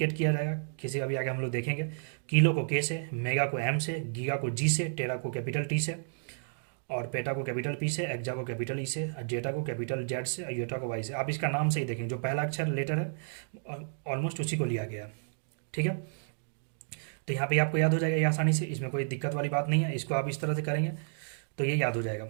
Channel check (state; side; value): silent; left; digital silence